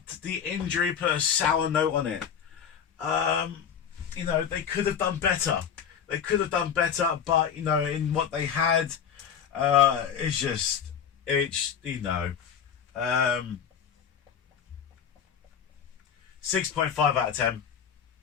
the injury put a sour note on it. They could have done better. But in what they had, it's 6.5 out of 10.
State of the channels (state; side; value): quieter; right; 7.9 dB